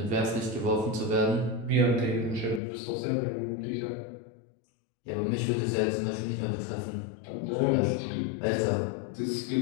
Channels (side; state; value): right; drops out; at 2.6 s